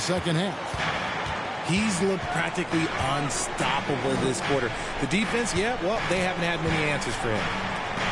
half. He's looked practically unstoppable this quarter. The defense, yeah, well, they haven't had many answers for him.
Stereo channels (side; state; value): both; identical; correlation 1.00